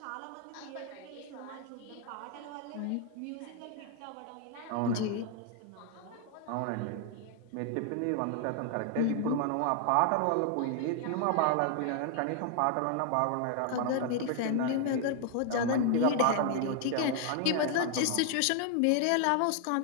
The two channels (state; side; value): different; both; correlation 0.00